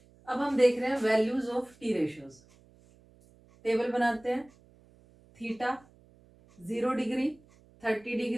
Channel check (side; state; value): right; noise; hum, 28 dB below the sound